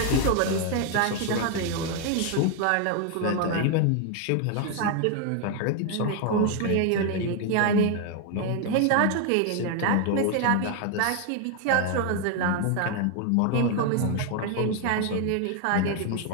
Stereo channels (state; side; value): different; both; correlation 0.01